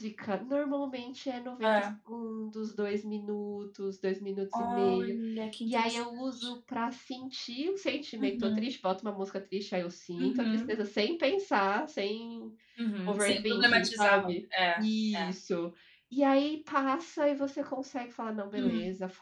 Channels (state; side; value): identical; both; correlation 1.00